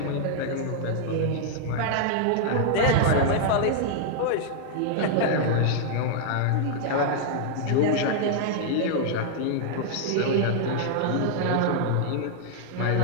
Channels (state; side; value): different; both; correlation -0.01